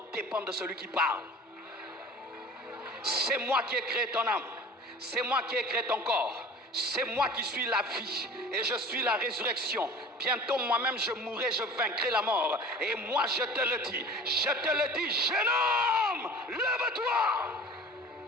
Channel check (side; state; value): both; normal; correlation 0.42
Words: dépend de celui qui parle. C'est moi qui ai créé ton âme. C'est moi qui ai créé ton corps. C'est moi qui suis la vie et je suis la résurrection. Bientôt moi-même je mourrai, je vaincrai la mort. Et moi je te le dis. Je te le dis, jeune homme, lève-toi.